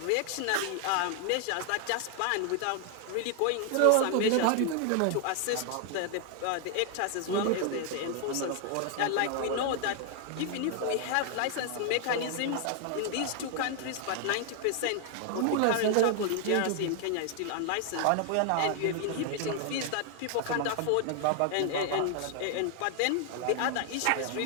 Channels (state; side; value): different; both; correlation 0.00